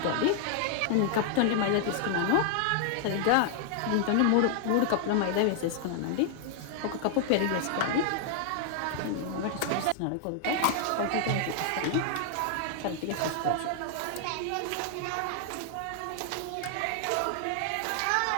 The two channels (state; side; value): different; both; correlation -0.01